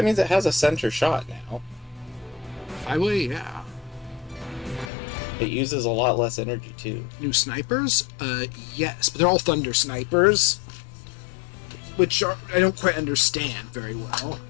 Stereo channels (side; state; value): right; drops out; at 4.9 s